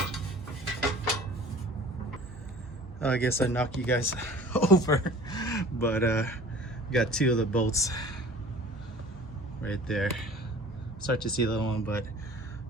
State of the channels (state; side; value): normal; both; correlation 0.45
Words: I guess I knocked you guys over, but got two of the bolts right there. Start to see the other one, but